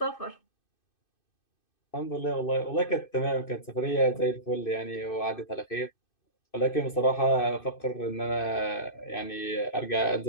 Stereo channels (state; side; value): late; right; 2.6 ms